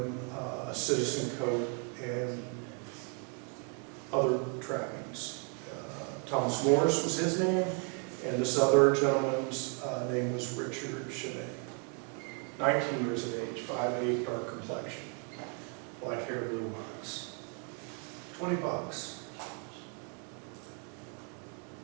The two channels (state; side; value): quieter; left; 37.4 dB